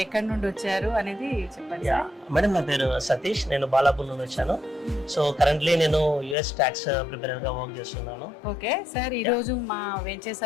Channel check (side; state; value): right; drops out; at 6.4 s